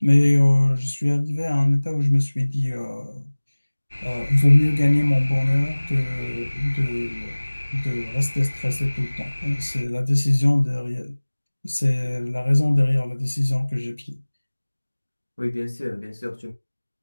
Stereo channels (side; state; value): both; inverted; correlation -1.00